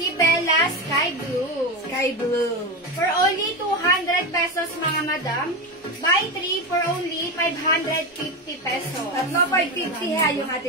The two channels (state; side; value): normal; both; correlation 0.16